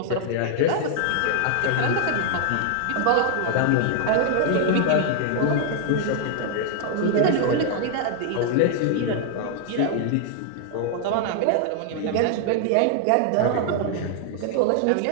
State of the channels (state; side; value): different; both; correlation 0.00